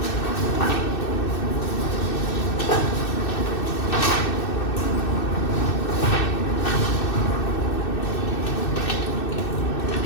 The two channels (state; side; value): late; right; 2.6 ms